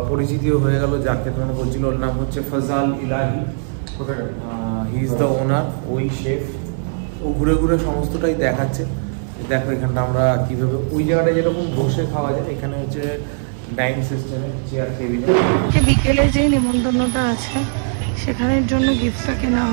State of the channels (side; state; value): left; silent; digital silence